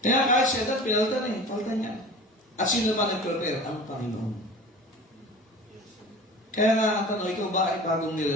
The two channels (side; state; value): both; normal; correlation 0.38